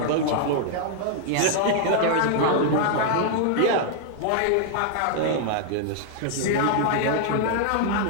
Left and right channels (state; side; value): different; both; correlation -0.01